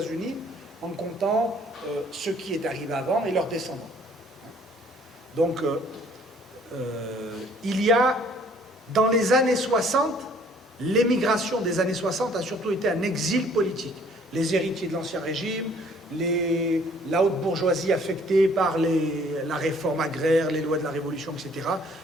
en comptant ce qui est arrivé avant et leurs descendants. Donc, il y a, dans les années 60, l'émigration des années 60 a surtout été un exil politique. Les héritiers de l'Ancien Régime, la haute bourgeoisie affectée par la réforme agraire, les lois de la Révolution, etc.,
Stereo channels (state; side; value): normal; both; correlation 0.58